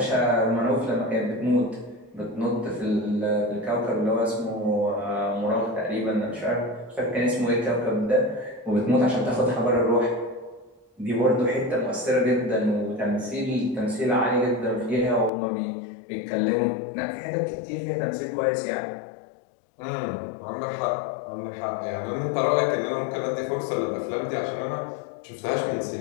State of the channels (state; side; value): drops out; right; at 15.3 s